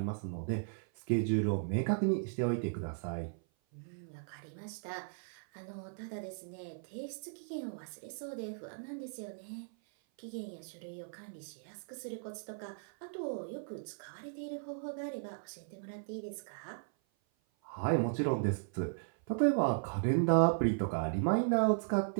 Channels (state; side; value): silent; left; 53 dB below the other